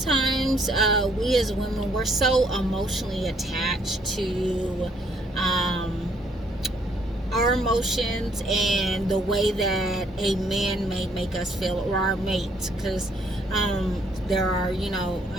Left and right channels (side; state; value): both; normal; correlation 0.67